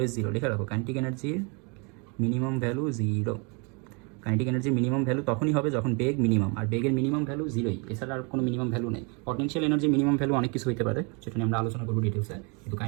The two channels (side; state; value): left; quieter; 33.1 dB